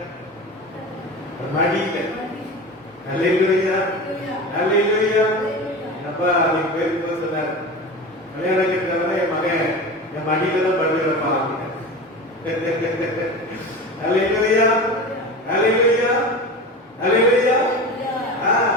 மடியில. அல்லேலூயா. அல்லேலூயா. அப்பா நீங்க பேருக்கு சொன்னார், கல்யாணம் கேட்கிறவன என் மகன் என் மடியில தான் படுகிற பாருங்க. அல்லேலூயா. அல்லேலூயா. அல்லேலூயா.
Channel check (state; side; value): normal; both; correlation 0.29